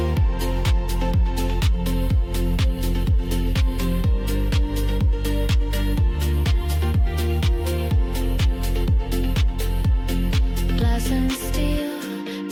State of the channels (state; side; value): identical; both; correlation 1.00